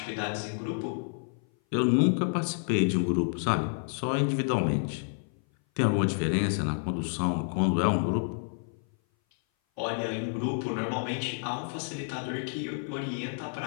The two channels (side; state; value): right; silent; 57 dB below the other